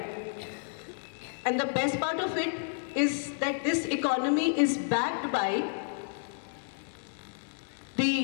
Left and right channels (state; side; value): silent; right; digital silence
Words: And the best part of it is that this economy is backed by